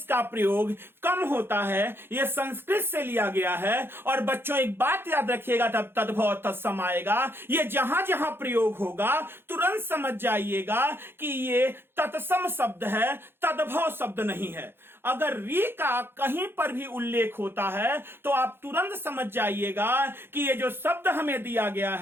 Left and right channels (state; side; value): late; left; 0.11 ms